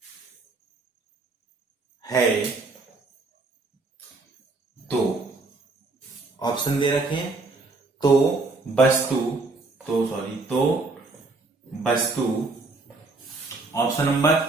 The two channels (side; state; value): left; quieter; 3.5 dB